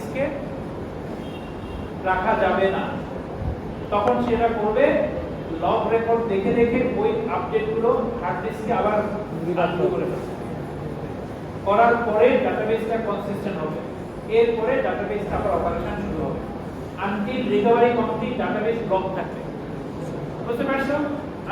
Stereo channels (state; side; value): identical; both; correlation 1.00